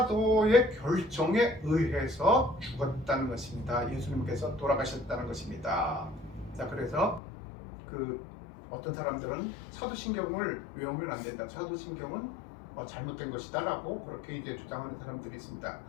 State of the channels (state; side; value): drops out; right; at 7.2 s